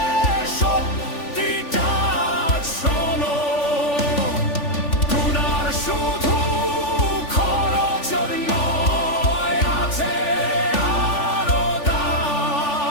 সত্যিটা শোনো। গুনার শুধু খরচ নয়, আছে আরো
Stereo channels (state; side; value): late; right; 3.4 ms